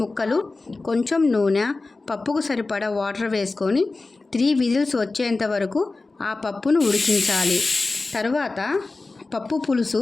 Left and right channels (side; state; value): right; quieter; 3.5 dB